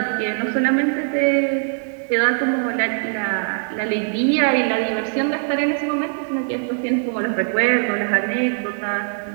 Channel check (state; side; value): silent; left; 65 dB below the other